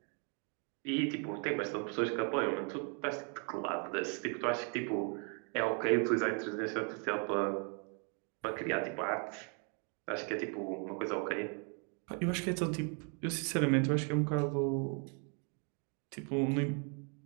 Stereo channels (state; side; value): quieter; left; 38.7 dB